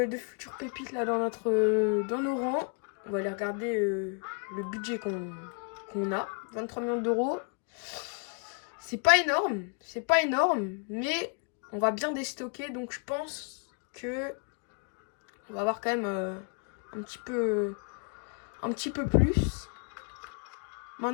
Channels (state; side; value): quieter; right; 39.7 dB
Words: futures pépites là dans nos rangs. On va aller regarder le budget qu'on a. 23 millions d'euros. C'est pas énorme, mais on va bien déstocker. Donc je pense que on va avoir quand même un petit peu plus.